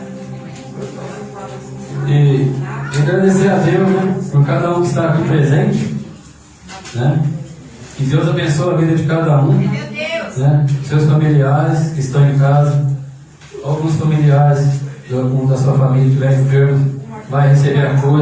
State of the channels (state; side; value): identical; both; correlation 1.00